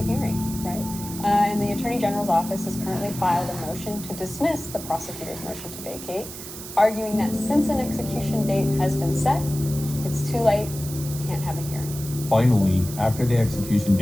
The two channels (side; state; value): right; noise; hiss, 11 dB below the sound